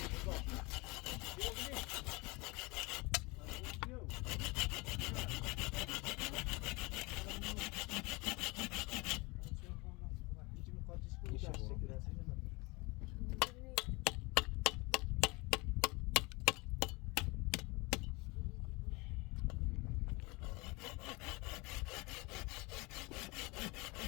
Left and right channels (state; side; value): quieter; right; 25.6 dB